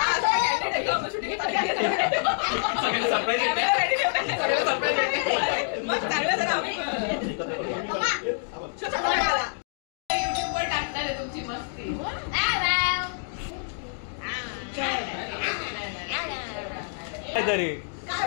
तुमची मस्ती तरी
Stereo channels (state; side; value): silent; right; digital silence